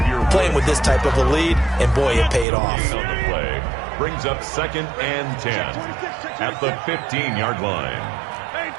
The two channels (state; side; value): drops out; left; at 2.5 s